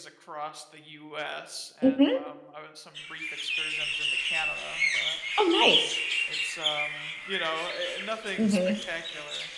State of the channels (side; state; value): both; identical; correlation 1.00